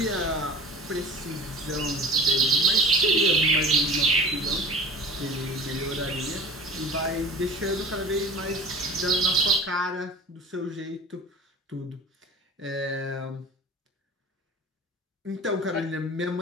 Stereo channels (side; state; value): both; normal; correlation 0.38